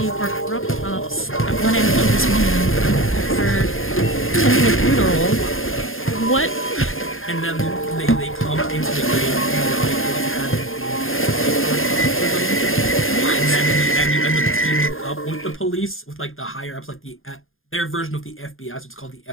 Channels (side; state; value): right; late; 0.60 ms